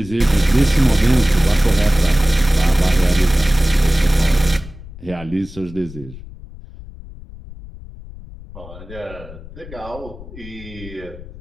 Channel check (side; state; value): left; noise; rumble, 16 dB below the sound